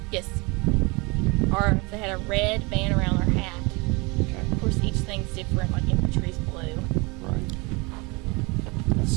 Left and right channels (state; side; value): quieter; left; 27.5 dB